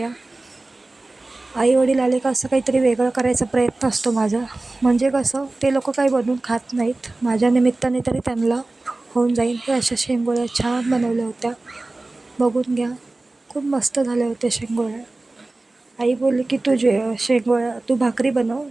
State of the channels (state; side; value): quieter; left; 3.1 dB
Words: आई वडील आले का असं काहीतरी वेगळं करायचा प्रयत्न असतो माझा. म्हणजे कसं, ते लोक काही बनवून खात नाहीत, माझ्या निमित्ताने तरी त्यांना होऊन जाईल. हे अशा शेंगोळ्या छान बनवल्या होत्या, बघून घ्या. खूप मस्त झाल्या होत्या शेंगोळ्या. आई बोलली की तू भाकरी बनव,